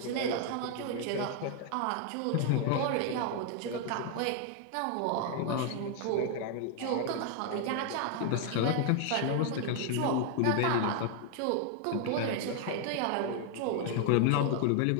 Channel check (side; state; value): both; different; correlation 0.00